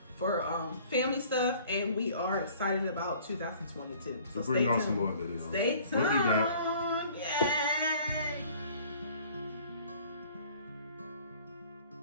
for family stuff, and we are excited about 2022. So bring on some more videos. Stay tuned. We'll be back. Yeah.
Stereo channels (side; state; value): both; inverted; correlation -0.52